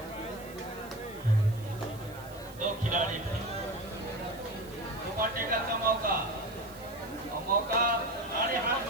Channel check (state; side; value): noise; right; hiss, 20 dB below the sound